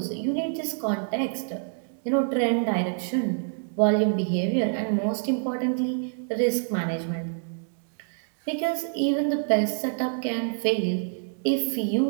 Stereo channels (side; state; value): left; silent; digital silence